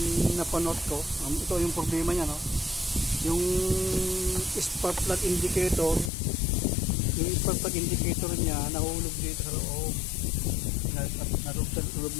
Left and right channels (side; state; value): right; drops out; at 6.1 s